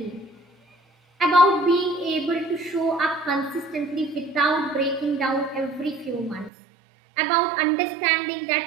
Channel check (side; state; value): left; drops out; at 6.5 s